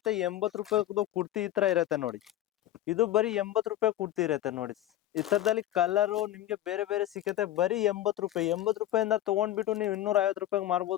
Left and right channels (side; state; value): right; quieter; 13.3 dB